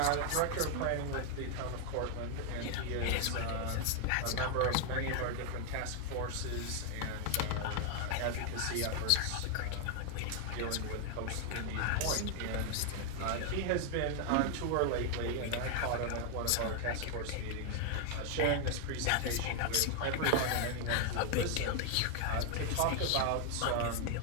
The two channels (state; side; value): different; both; correlation 0.00